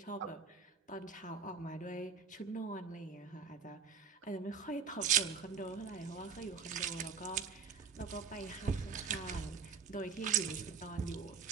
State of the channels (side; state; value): left; quieter; 5.9 dB